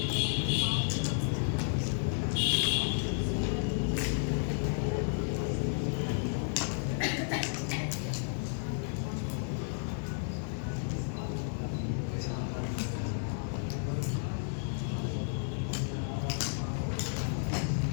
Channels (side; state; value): right; silent; digital silence